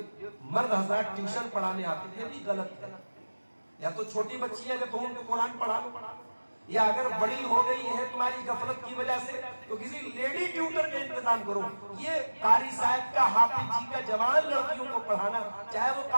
مرد حضرات ٹیوشن پڑھانے آتے ہیں، یہ بھی غلط ہے۔ یا تو چھوٹی بچی ہے جب تم ان کو قرآن پڑھا لو، یا اگر بڑی ہو گئی ہے تمہاری غفلت کی وجہ سے تو کسی لیڈی ٹیوٹر کا انتظام کرو۔ یہ قاری صاحب کا، حافظ جی کا جوان لڑکیوں کو پڑھانا، چاہے وہ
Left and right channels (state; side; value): inverted; both; correlation -1.00